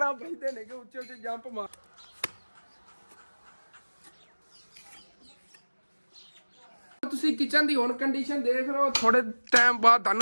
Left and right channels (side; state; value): both; inverted; correlation -1.00